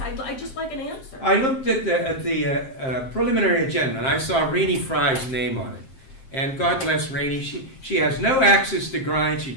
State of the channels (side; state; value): right; late; 7.6 ms